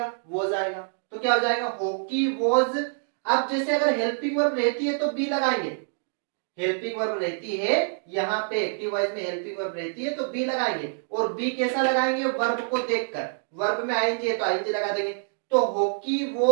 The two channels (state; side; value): silent; left; digital silence